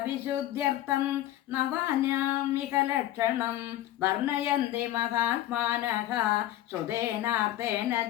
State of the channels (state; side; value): quieter; right; 13.8 dB